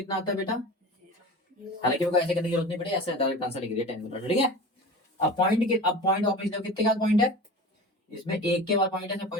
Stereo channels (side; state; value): both; normal; correlation 0.34